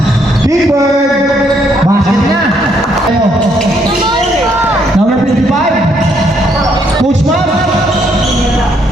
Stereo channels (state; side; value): normal; both; correlation 0.71